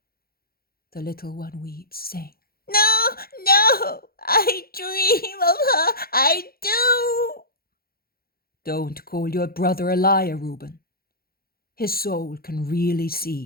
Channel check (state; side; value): late; right; 0.44 ms